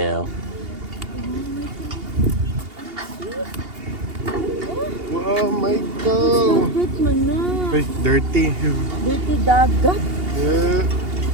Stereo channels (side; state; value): left; late; 2.8 ms